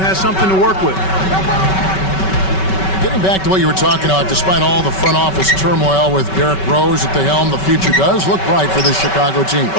something to work with. Getting back to what you were talking about, despite all the front office turmoil with Derrick Rose at the helm, the future does look bright for this Chicago team.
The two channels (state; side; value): late; right; 5.3 ms